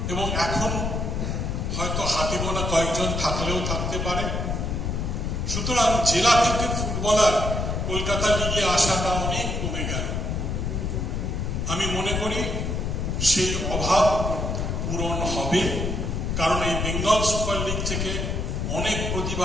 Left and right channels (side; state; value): left; noise; rumble, 1 dB below the sound